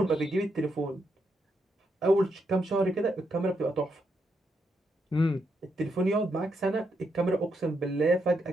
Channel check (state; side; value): normal; both; correlation 0.80